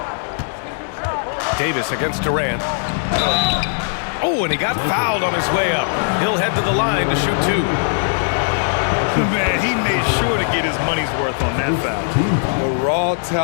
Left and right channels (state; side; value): silent; right; digital silence